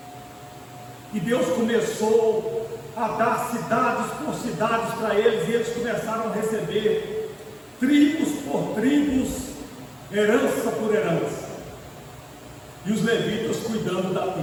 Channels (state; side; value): identical; both; correlation 1.00